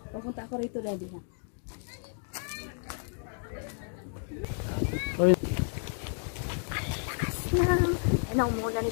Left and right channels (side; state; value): right; silent; 57 dB below the other